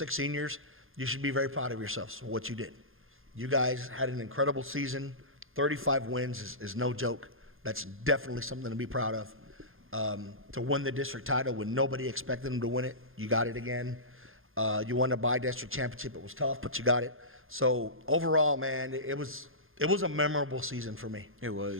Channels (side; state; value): left; late; 0.60 ms